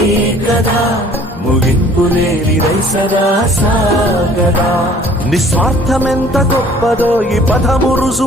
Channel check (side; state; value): both; normal; correlation 0.53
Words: కదా ముగింపు లేనిదై సదా సాగదా నిస్వార్థమెంత గొప్పదో ఈ పదము